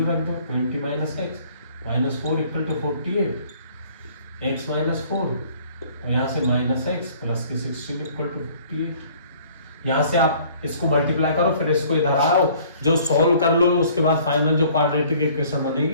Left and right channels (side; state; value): both; inverted; correlation -0.55